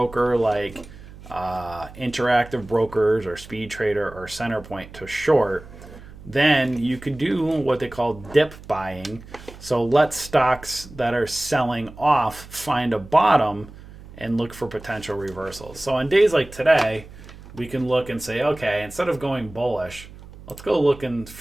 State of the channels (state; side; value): noise; right; hum, 18 dB below the sound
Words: like Interactive Brokers or Speed Trader or Centerpoint to short, then you could do what they call dip buying. So let stocks that are selling off find a bottom and look for potential reversals. So on days like today, we can look and say, okay, instead of going bullish, let's go look and